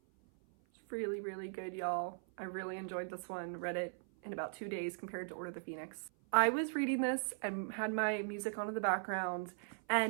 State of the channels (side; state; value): left; silent; 52 dB below the other